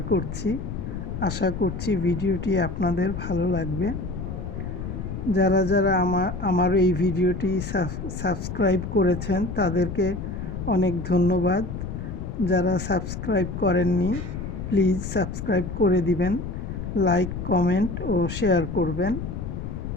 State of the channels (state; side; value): noise; left; rumble, 6 dB below the sound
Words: করছি। আশা করছি ভিডিওটি আপনাদের ভালো লাগবে। যারা যারা আমার এই ভিডিওটি সাবস্ক্রাইব করেছেন তাদেরকে অনেক ধন্যবাদ। যারা সাবস্ক্রাইব করেননি প্লিজ সাবস্ক্রাইব করে দিবেন, লাইক, কমেন্ট ও শেয়ার করবেন।